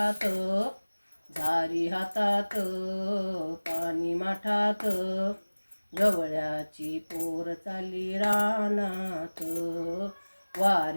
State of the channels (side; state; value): both; inverted; correlation -1.00